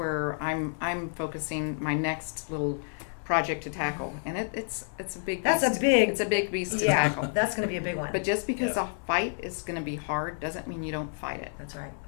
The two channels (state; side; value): silent; right; digital silence